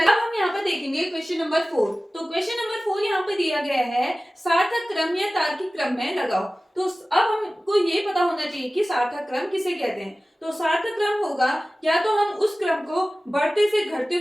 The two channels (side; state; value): both; normal; correlation 0.97